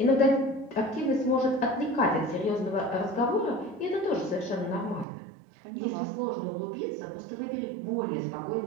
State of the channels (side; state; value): left; drops out; at 5.1 s